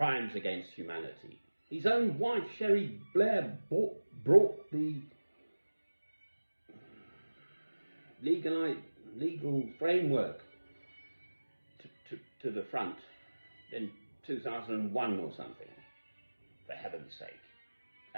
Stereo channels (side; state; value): both; inverted; correlation -1.00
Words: against humanity. His own wife, Sherry Blair, brought the legal framework to the front in 2001 or something, for heaven's sake.